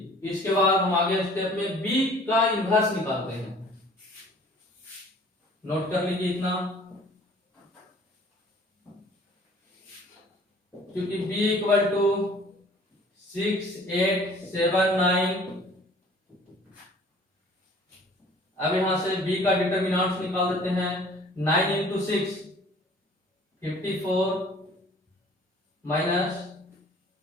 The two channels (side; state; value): both; normal; correlation 0.51